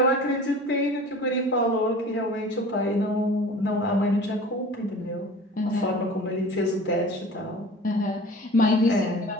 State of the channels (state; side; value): normal; both; correlation 0.41